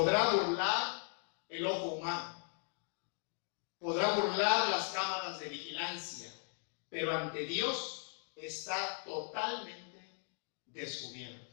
burlar el ojo humano, podrá burlar las cámaras de vigilancia, pero ante Dios está totalmente descubierto.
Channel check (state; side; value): silent; right; 52 dB below the other